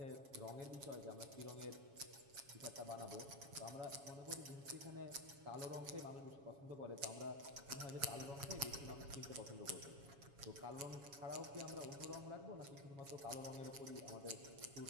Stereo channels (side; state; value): left; late; 7.2 ms